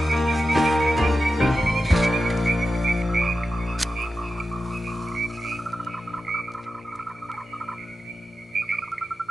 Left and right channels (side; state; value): both; normal; correlation 0.91